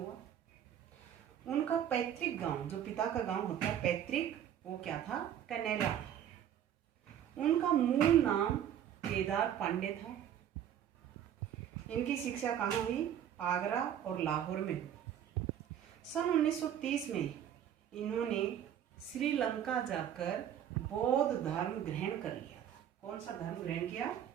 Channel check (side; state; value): left; quieter; 10.0 dB